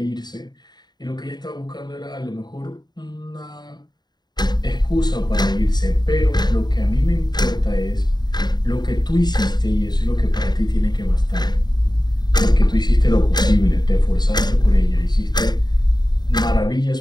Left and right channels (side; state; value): right; late; 0.20 ms